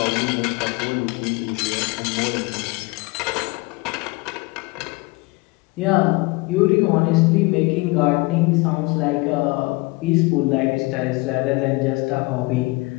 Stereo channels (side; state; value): right; quieter; 25.0 dB